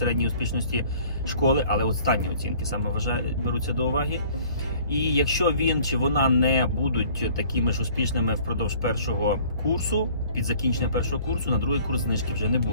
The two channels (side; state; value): both; inverted; correlation -0.52